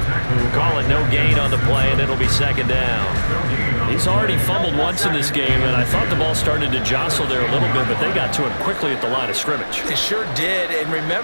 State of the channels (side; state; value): both; inverted; correlation -1.00